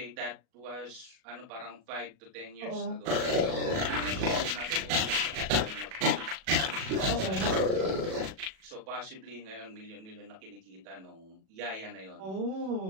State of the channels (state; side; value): late; left; 37 ms